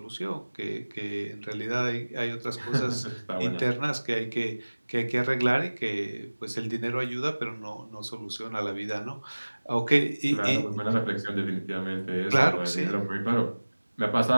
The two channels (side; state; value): both; inverted; correlation -1.00